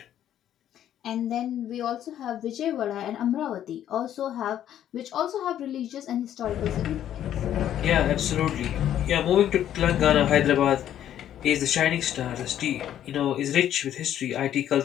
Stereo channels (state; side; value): quieter; right; 11.0 dB